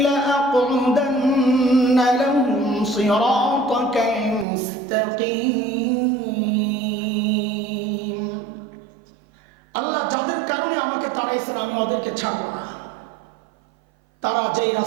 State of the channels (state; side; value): drops out; left; at 4.5 s